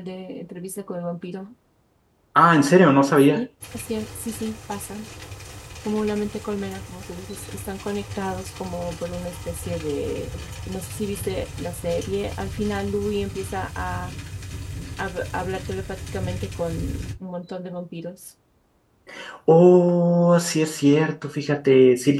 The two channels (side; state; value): both; identical; correlation 1.00